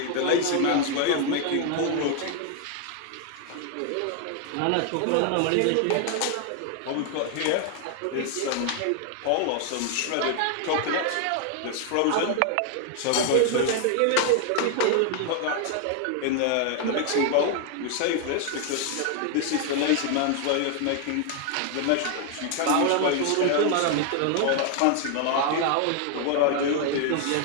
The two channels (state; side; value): different; both; correlation 0.00